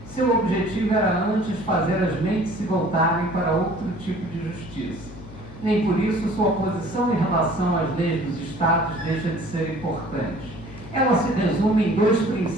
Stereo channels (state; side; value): noise; left; hum, 16 dB below the sound